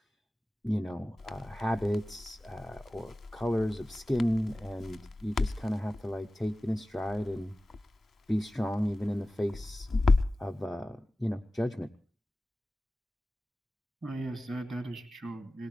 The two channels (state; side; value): normal; both; correlation 0.96